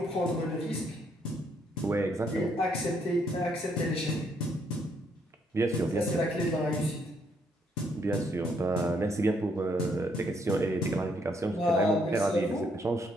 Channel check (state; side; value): normal; both; correlation 0.71